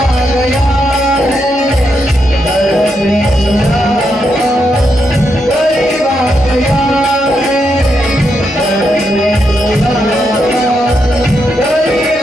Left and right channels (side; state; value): both; normal; correlation 0.82